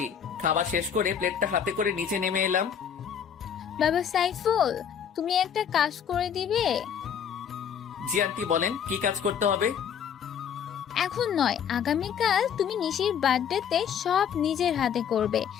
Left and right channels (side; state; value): right; quieter; 8.1 dB